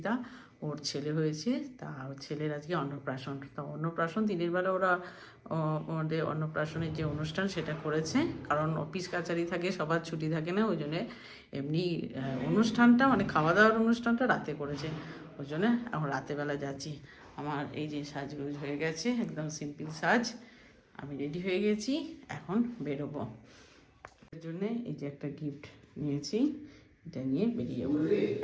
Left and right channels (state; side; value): identical; both; correlation 1.00